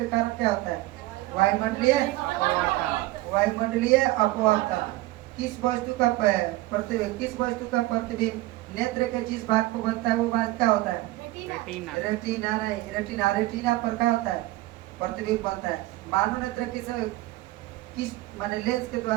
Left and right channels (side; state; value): left; quieter; 18.4 dB